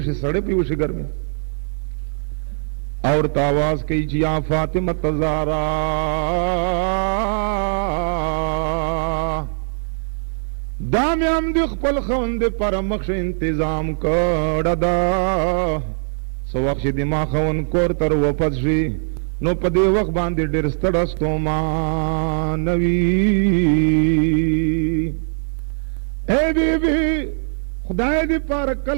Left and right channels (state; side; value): silent; left; digital silence